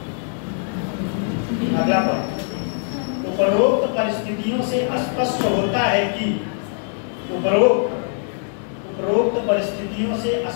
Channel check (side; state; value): right; silent; digital silence